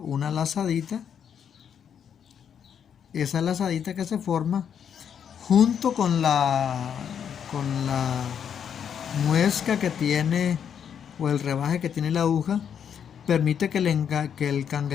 lazadita. Esa lazadita que se forma junto con la muesca que tiene, o el rebaje que tiene la aguja, permite que el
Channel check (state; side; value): quieter; right; 8.2 dB